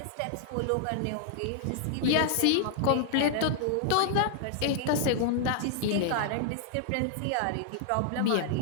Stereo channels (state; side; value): different; both; correlation 0.00